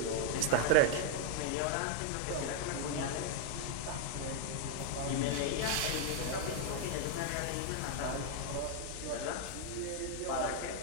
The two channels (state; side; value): different; both; correlation -0.01